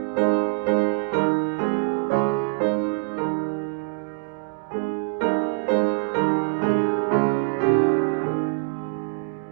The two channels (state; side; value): silent; left; digital silence